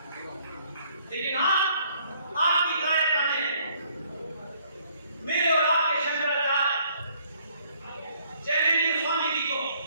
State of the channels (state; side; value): inverted; both; correlation -0.64